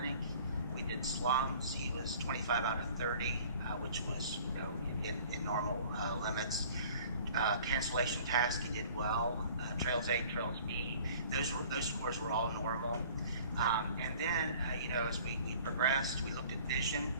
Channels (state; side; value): inverted; both; correlation -0.49